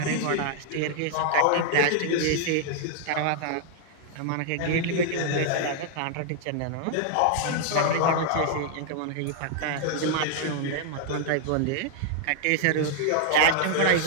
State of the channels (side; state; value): both; different; correlation 0.00